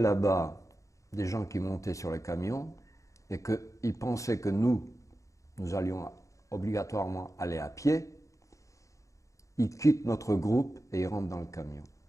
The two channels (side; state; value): right; late; 0.15 ms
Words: des gens qui montaient sur les camions et qu'il pensait que nous allions obligatoirement aller à pied, il quitte notre groupe et il rentre dans le camion.